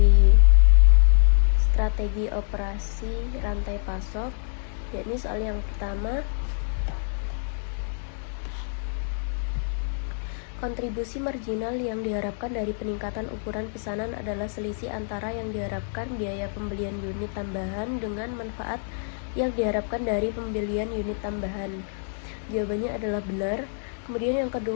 strategi operasi rantai pasok, yakni soal yang pertama, kontribusi marginal yang diharapkan dari peningkatan ukuran pesanan adalah selisih antara yang diharapkan biaya pembelian unit tambahan dengan manfaat yang diharapkan dari pembelian unit tambahan. Jawabannya adalah benar. Kemudian yang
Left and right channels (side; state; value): right; silent; digital silence